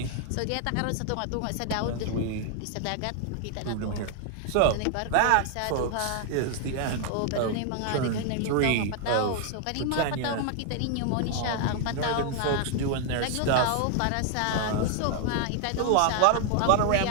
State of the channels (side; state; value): both; different; correlation 0.00